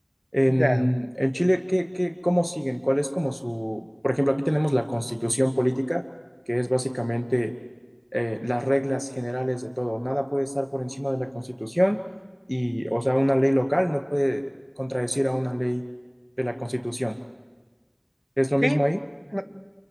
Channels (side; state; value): both; identical; correlation 1.00